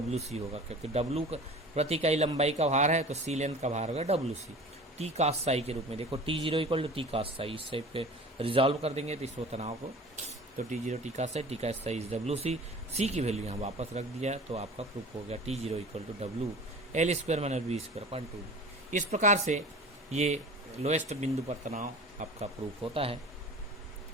होगा, क्योंकि W प्रति इकाई लंबाई का भार है तो C लेंथ का भार होगा WC। T cos साई के रूप में देखो, T0 equal to T cos psi, इस टाइप पे रिजॉल्व कर देंगे तो इस तनाव को, तो T0 T cos Sai, T cos Sai is WC। C की वैल्यू यहाँ वापस रख दिया तो आपका प्रूफ हो गया T0 equal to W L square minus b square upon 2। इस प्रकार से ये लोएस्ट बिंदु पर तनाव आपका प्रूफ होता है।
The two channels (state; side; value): normal; both; correlation 0.40